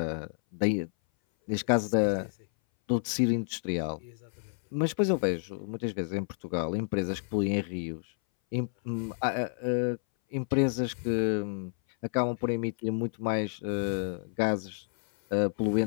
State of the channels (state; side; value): silent; right; 58 dB below the other